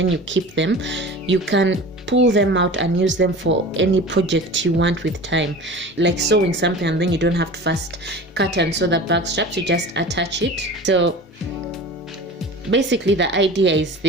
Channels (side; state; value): both; normal; correlation 0.37